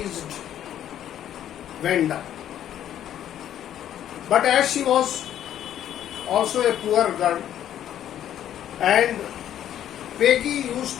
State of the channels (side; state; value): right; quieter; 10.9 dB